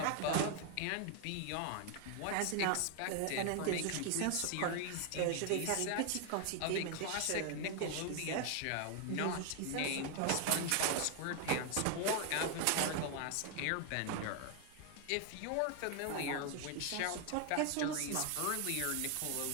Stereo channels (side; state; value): both; different; correlation 0.00